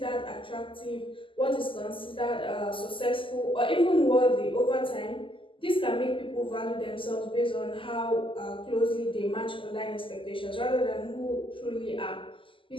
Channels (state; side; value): late; right; 0.25 ms